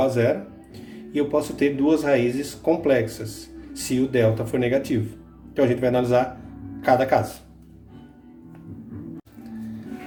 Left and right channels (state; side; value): identical; both; correlation 1.00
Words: a zero. E eu posso ter duas raízes complexas, se o delta for negativo. Então a gente vai analisar cada caso.